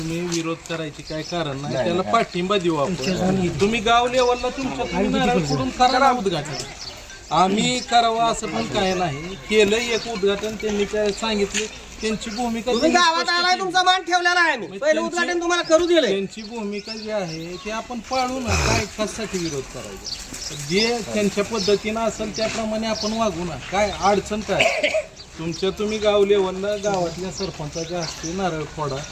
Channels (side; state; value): both; identical; correlation 1.00